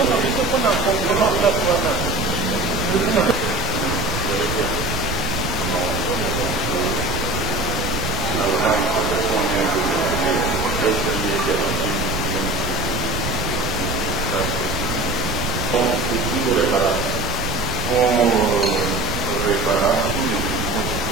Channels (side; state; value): right; noise; rumble, 5 dB below the sound